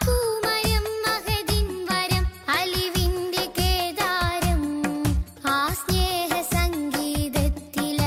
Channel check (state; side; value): identical; both; correlation 1.00